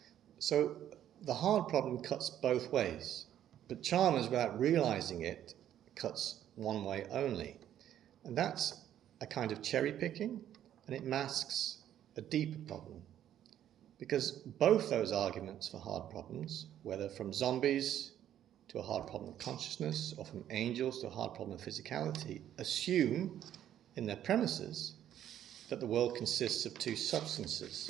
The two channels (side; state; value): left; quieter; 11.0 dB